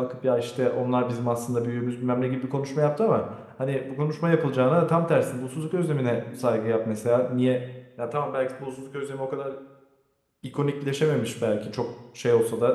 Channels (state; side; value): identical; both; correlation 1.00